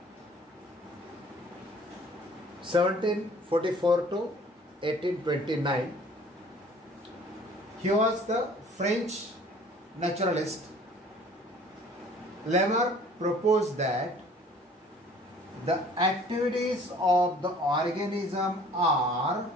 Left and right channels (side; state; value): both; normal; correlation 0.52